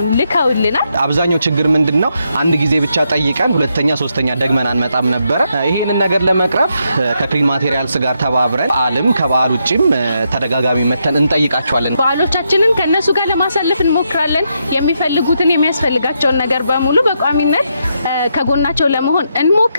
ልከውልናል። አብዛኛው ችግር ምንድነው? አንድ ጊዜ ብቻ ጠይቀን ሁለተኛ ሶስተኛ ደግመን አንመጣም ነበር። ይሄንን ነገር ለመቅረፍ ከክሊን ማቴሪያልስ ጋር ተባብረን በዓልም ከበዓል ውጪም ተደጋጋሚ መተን እንጠይቃቸዋለን። በዓሎቻችንን ከነሱ ጋር ለማሳለፍ እንሞክራለን። የሚፈልጉትን የሚያስፈልጋቸውን ነገር በሙሉ በቋሚነት ከጎናቸው ለመሆን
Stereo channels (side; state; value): both; inverted; correlation -0.80